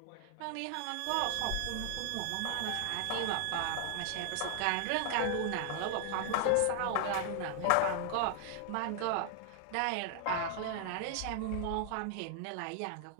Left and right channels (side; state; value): both; different; correlation 0.00